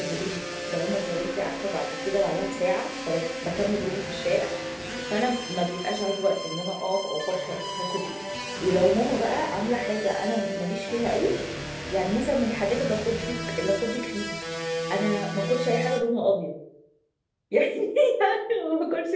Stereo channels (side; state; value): both; identical; correlation 1.00